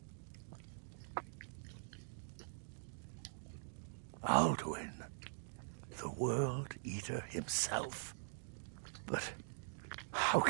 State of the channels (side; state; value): left; silent; digital silence